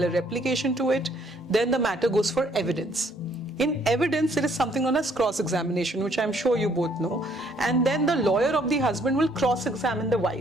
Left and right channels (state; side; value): normal; both; correlation 0.65